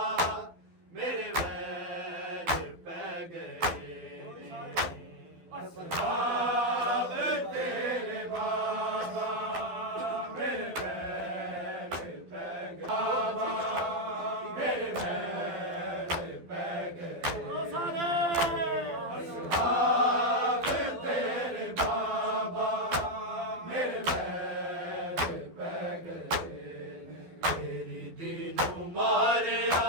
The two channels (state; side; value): late; left; 12 ms